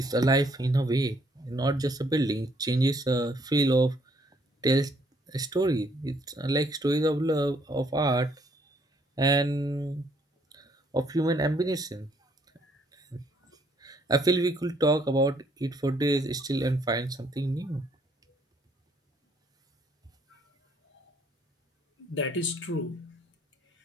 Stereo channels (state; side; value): normal; both; correlation 0.67